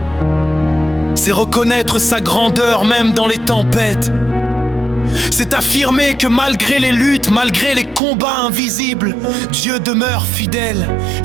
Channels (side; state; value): left; drops out; at 8.0 s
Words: c'est reconnaître sa grandeur même dans les tempêtes. C'est affirmer que malgré les luttes, malgré les combats invisibles, Dieu demeure fidèle,